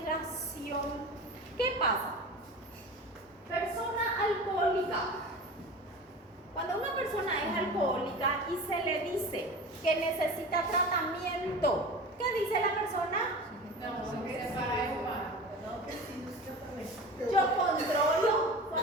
¿Qué pasa? Persona alcohólica. Cuando una persona es alcohólica y se le dice que necesita tratamiento, ¿qué dice la persona? Yo controlo,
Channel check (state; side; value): normal; both; correlation 0.34